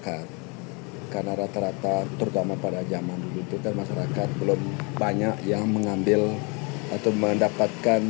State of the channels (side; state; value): right; quieter; 31.3 dB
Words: Karena rata-rata terutama pada zaman dulu itu kan masyarakat belum banyak yang mengambil atau